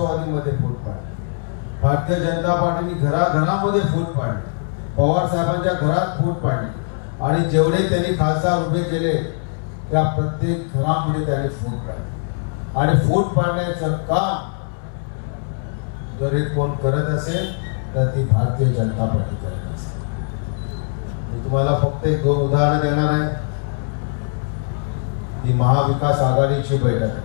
फूट पाडली, भारतीय जनता पार्टीने घराघरामध्ये फूट पाडली, पवार साहेबांच्या घरात फूट पाडली आणि जेवढे त्यांनी खासदार उभे केले त्या प्रत्येक घरामध्ये त्यांनी फूट पाडली. आणि फूट पाडण्याचं काम जर हे कोण करत असेल तर ती भारतीय जनता पार्टी करत असेल. मी तुम्हाला फक्त 1-2 उदाहरणं देणार आहे. ती महाविकास आघाडीची बैठक आहे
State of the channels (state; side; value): silent; right; 65 dB below the other